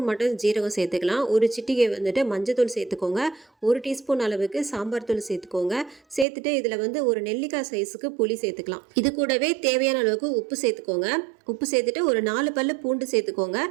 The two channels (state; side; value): drops out; left; at 6.2 s